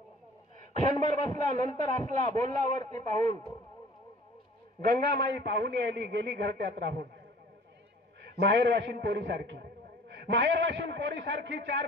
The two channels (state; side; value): normal; both; correlation 0.49